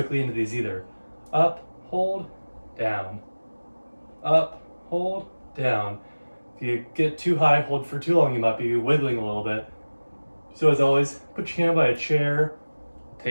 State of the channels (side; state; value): both; inverted; correlation -1.00